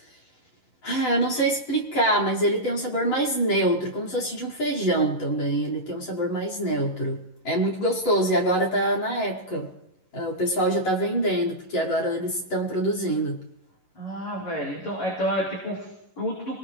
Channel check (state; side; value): late; right; 11 ms